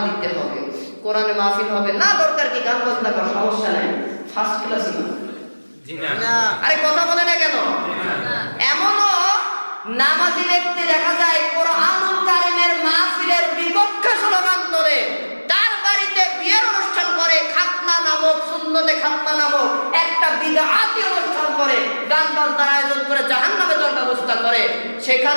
দিতে হবে, কোরআনের মাহফিল হবে না, দরকার কি গান বাজনা করার, সমস্যা নাই, ফার্স্ট ক্লাস না। আরে কথা বলে না কেন? এমনও নামাজি ব্যক্তি দেখা যায় কোরআনুল কারীমের মাহফিলের বিপক্ষে স্লোগান তোলে, তার বাড়িতে বিয়ের অনুষ্ঠান করে, খাতনা নামক, সুন্নতে খাতনা নামক একটা বিদআতি অনুষ্ঠান করে, গান বাজনার আয়োজন করে, জাহান্নামে যাওয়ার ব্যবস্থা করে,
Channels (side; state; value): both; inverted; correlation -1.00